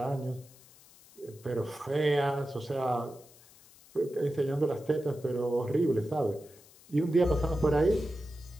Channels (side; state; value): left; noise; hiss, 24 dB below the sound